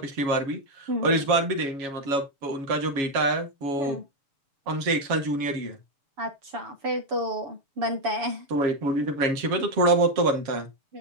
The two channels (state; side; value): late; left; 7.3 ms